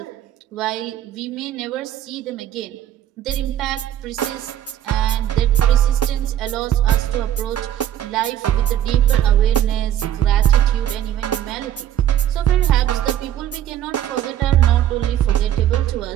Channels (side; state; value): left; quieter; 11.2 dB